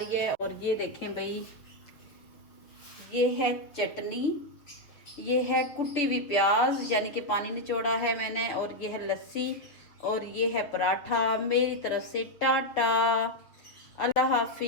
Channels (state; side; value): late; right; 6.5 ms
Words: है। और ये देखें भाई, ये है चटनी, ये है कुटी हुई प्याज यानी कि पानी निचोड़ा है मैंने, और ये है लस्सी, और ये है पराठा। मेरी तरफ से टाटा, अल्लाह